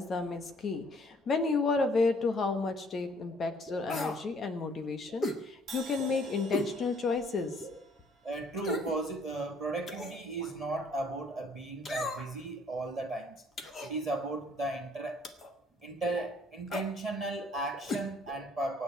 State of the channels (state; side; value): normal; both; correlation 0.61